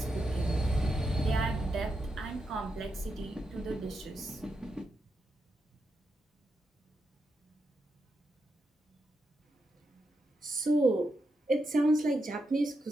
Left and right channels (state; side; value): normal; both; correlation 0.85